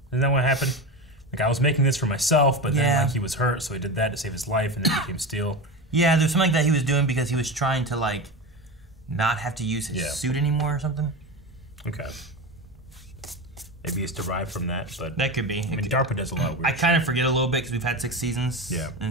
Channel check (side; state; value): both; normal; correlation 0.22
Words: Isn't that what happened? Like, I was making this for myself, but then like he was hurt, so he did that to save his life, and then it became steel. Yeah, there's something like that he was doing because he was trying to, like, not have to use his suit anymore or something. Okay. Maybe it's derived from that, but... That could be. I mean, DARPA does a lot of weird I kind of forget a little bit because we've had 6 seasons. Yeah.